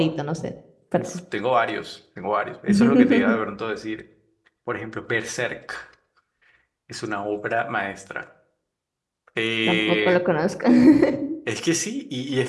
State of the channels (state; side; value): identical; both; correlation 1.00